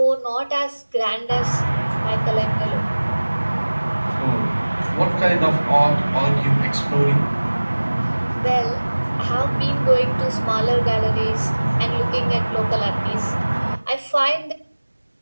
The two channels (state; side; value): inverted; both; correlation -1.00